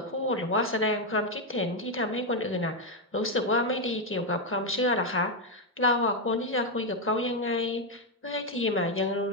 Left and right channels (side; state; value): both; normal; correlation 0.03